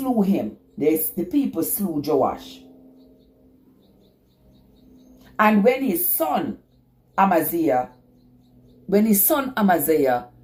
him. The people slew Joash. And when his son Amaziah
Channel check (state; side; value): identical; both; correlation 1.00